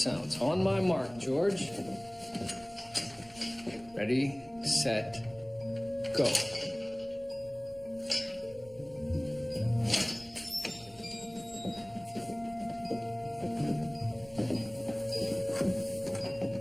On my mark, George. Ready, set, go.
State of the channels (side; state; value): right; noise; rumble, 24 dB below the sound